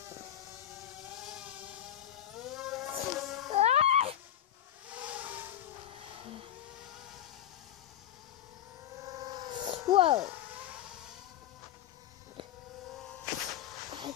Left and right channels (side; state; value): right; quieter; 11.3 dB